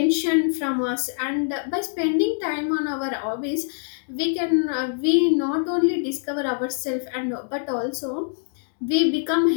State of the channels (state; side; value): silent; right; digital silence